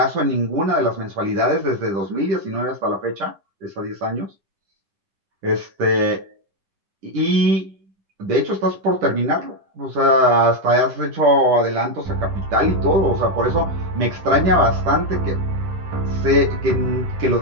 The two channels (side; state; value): left; late; 10 ms